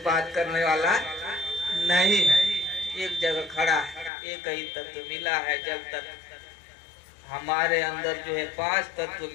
बात करने वाला नहीं है। एक जगह खड़ा है, एक ही तत्व मिला है। जब तक हमारे अंदर जो है 5 तत्व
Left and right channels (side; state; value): right; drops out; at 4.1 s